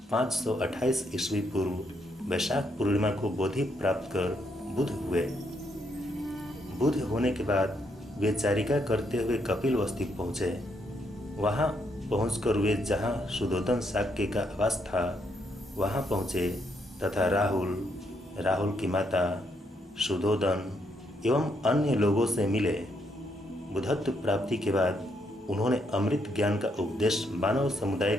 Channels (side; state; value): both; normal; correlation 0.75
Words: 528 ईस्वी पूर्व वैशाख पूर्णिमा को बोधि प्राप्त कर बुद्ध हुए। बुद्ध होने के बाद वे चारिका करते हुए कपिलवस्तु पहुँचे। वहाँ पहुंचकर वे जहाँ सुधोधन शाक्य का आवास था वहाँ पहुँचे तथा राहुल की माता, सुधोधन एवं अन्य लोगों से मिले। बुद्धत्व प्राप्ति के बाद उन्होंने अमृत ज्ञान का उपदेश मानव समुदाय